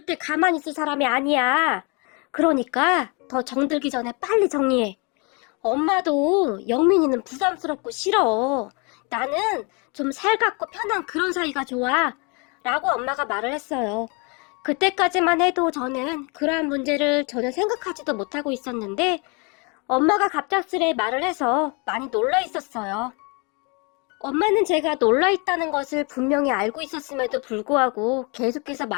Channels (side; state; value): right; quieter; 31.6 dB